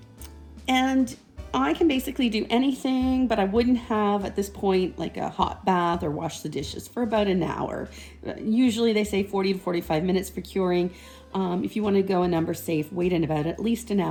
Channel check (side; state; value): both; identical; correlation 1.00